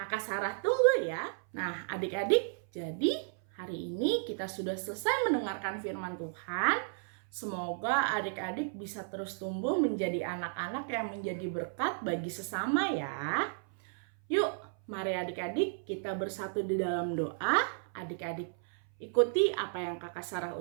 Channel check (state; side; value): silent; left; 56 dB below the other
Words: Sarah tunggu ya. Nah adik-adik, jadi hari ini kita sudah selesai mendengarkan firman Tuhan. Semoga adik-adik bisa terus tumbuh menjadi anak-anak yang menjadi berkat bagi sesama ya. Yuk, mari adik-adik kita bersatu di dalam doa. Adik-adik ikuti apa yang Kakak Sarah